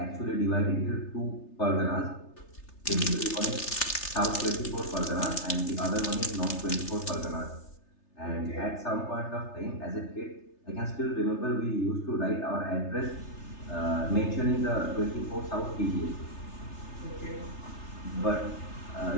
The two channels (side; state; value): right; late; 3.3 ms